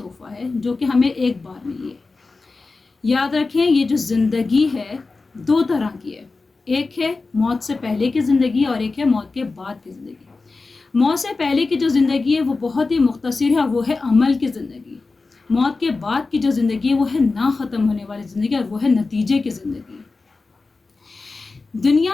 है जो कि हमें एक बार मिली है। याद रखें, ये जो ज़िंदगी है दो तरह की है। एक है मौत से पहले की ज़िंदगी और एक है मौत के बाद की ज़िंदगी। मौत से पहले की जो ज़िंदगी है वो बहुत ही मुख्तसर है और वो है अमल की ज़िंदगी। मौत के बाद की जो ज़िंदगी है वो है ना ख़त्म होने वाली ज़िंदगी और वो है नतीजे की ज़िंदगी।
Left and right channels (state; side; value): quieter; right; 3.8 dB